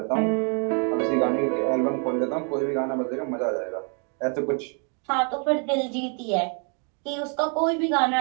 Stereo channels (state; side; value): quieter; left; 39.7 dB